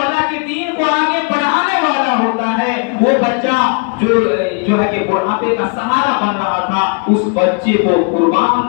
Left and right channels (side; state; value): right; quieter; 36.5 dB